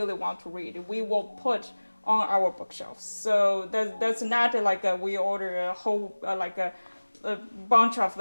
want to read. We will put on our bookshelves. So that's not we order a whole a bunch of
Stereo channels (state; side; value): inverted; both; correlation -1.00